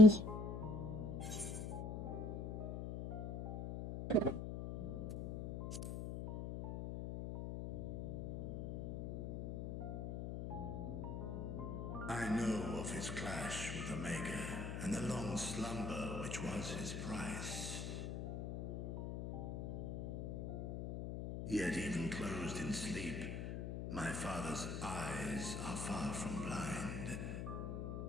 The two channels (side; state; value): left; noise; hum, 5 dB below the sound